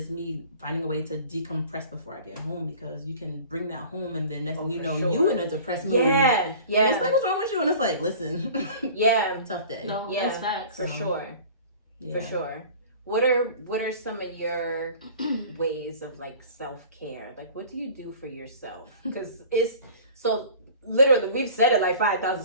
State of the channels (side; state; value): both; inverted; correlation -0.43